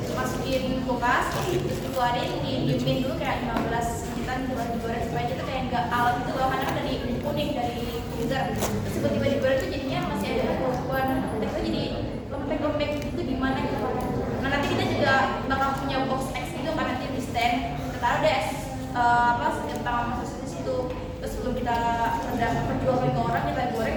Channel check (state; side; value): identical; both; correlation 1.00